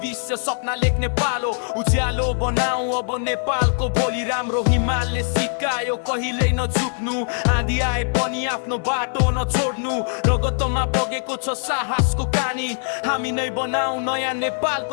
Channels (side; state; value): right; silent; digital silence